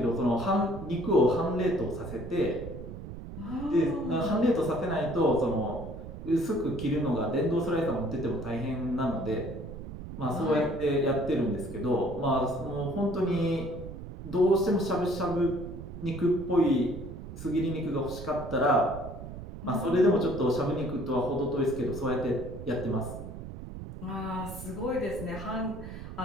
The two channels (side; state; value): right; noise; rumble, 11 dB below the sound